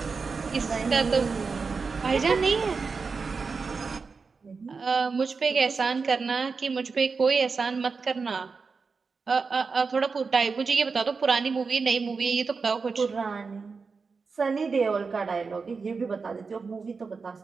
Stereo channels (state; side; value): quieter; left; 4.8 dB